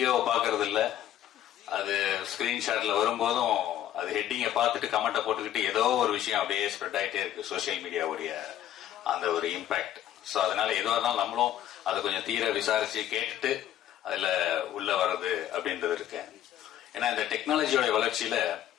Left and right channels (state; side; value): quieter; right; 11.9 dB